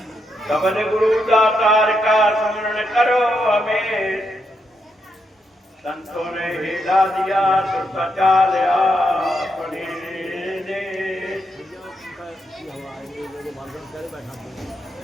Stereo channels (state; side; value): normal; both; correlation 0.81